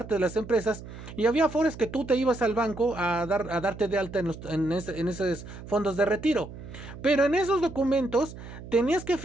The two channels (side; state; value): right; noise; hum, 13 dB below the sound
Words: de las empresas y había afores que tú te ibas al banco a darte de alta en esos fondos de retiro. Pero en esos documentos tenías que